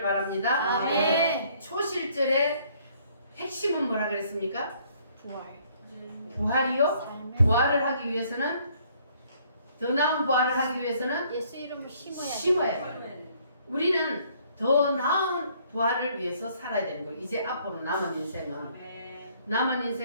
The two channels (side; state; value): both; inverted; correlation -0.63